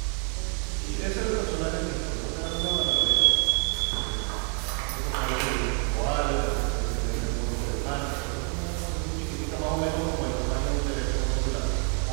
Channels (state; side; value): quieter; left; 39.9 dB